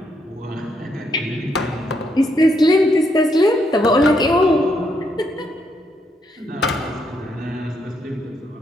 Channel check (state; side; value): normal; both; correlation 0.76